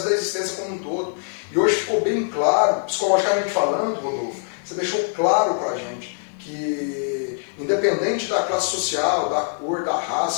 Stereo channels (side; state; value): right; silent; digital silence